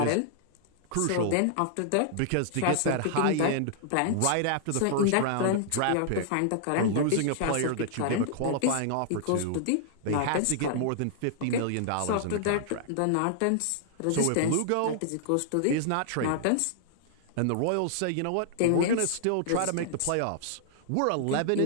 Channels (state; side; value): different; both; correlation -0.01